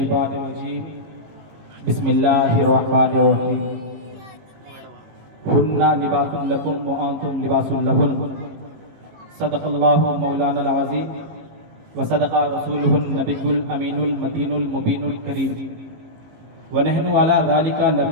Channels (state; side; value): late; left; 18 ms